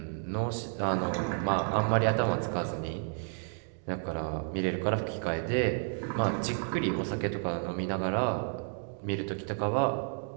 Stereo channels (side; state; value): left; silent; 57 dB below the other